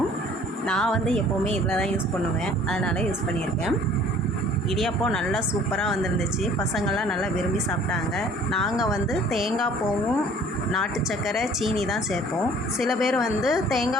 நான் எப்போவுமே இதில் தான் யூஸ் பண்ணுவேன், அதனால் யூஸ் பண்ணியிருக்கேன். இடியாப்பம் நல்லா சூப்பராக வந்துருந்துச்சு. பசங்கள்லாம் நல்லா விரும்பி சாப்பிட்டாங்க. நாங்கள் தேங்காய் பூவும் நாட்டு சர்க்கரை சீனி தான் சேர்ப்போம். சில பேர்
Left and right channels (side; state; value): both; normal; correlation 0.53